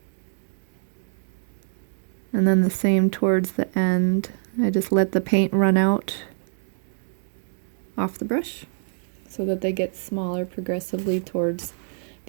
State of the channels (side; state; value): left; silent; digital silence